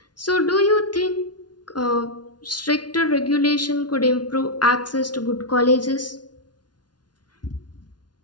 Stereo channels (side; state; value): right; late; 0.70 ms